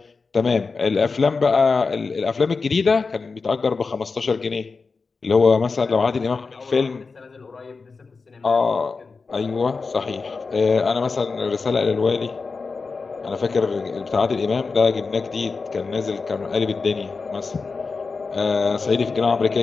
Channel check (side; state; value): right; quieter; 4.4 dB